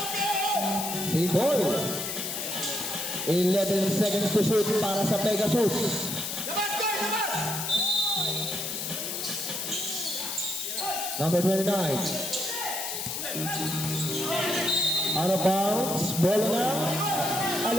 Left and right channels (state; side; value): noise; left; hiss, 4 dB below the sound